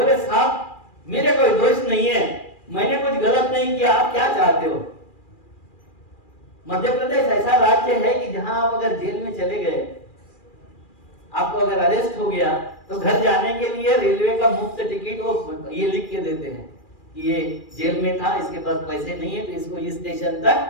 साहब मेरे कोई दोष नहीं है, मैंने कुछ गलत नहीं किया, आप क्या चाहते हो? मध्य प्रदेश ऐसा राज्य है कि जहां आप अगर जेल में चले गए, आपको अगर अरेस्ट हो गया तो घर जाने के लिए रेलवे का मुफ्त टिकट वो ये लिख के देते हैं कि ये जेल में था, इसके पास पैसे नहीं है तो इसको इस स्टेशन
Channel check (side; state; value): right; late; 2.4 ms